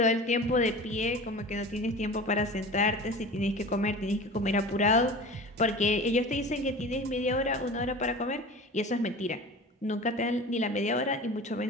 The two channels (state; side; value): normal; both; correlation 0.36